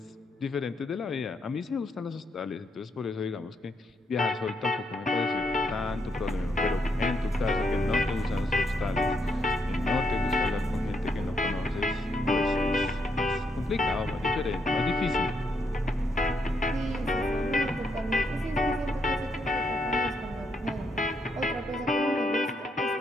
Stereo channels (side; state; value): both; normal; correlation 0.77